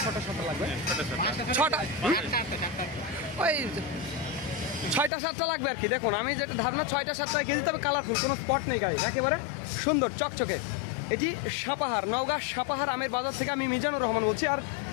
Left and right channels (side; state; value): right; drops out; at 5.1 s